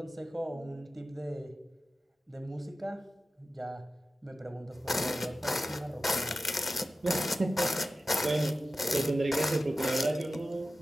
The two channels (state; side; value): normal; both; correlation 0.93